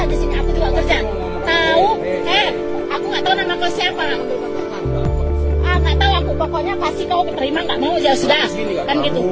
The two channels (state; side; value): identical; both; correlation 1.00